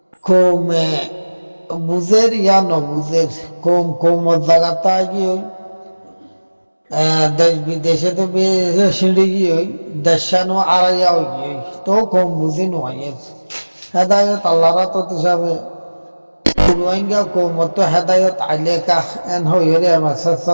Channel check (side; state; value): both; inverted; correlation -1.00